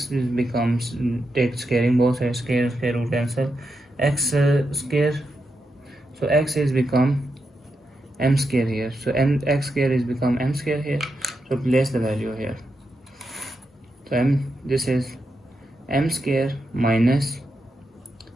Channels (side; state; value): both; normal; correlation 0.85